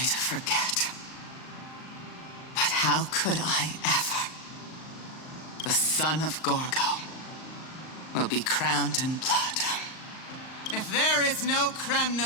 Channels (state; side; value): late; right; 38 ms